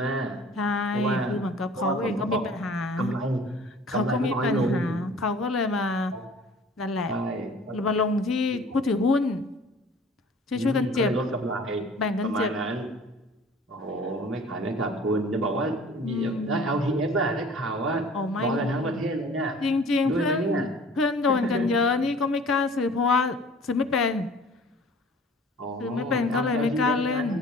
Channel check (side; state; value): both; normal; correlation 0.48